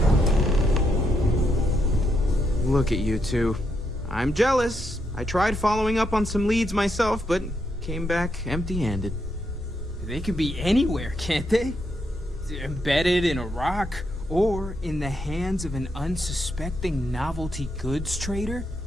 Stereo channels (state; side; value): normal; both; correlation 0.80